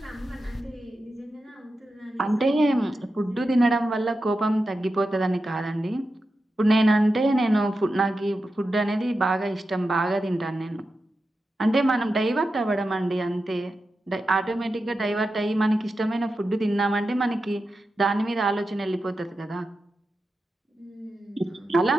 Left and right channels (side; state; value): both; normal; correlation 0.90